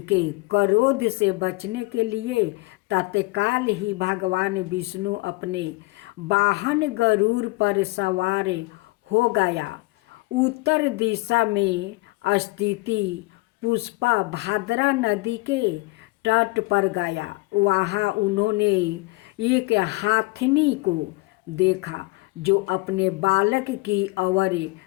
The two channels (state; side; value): quieter; right; 24.5 dB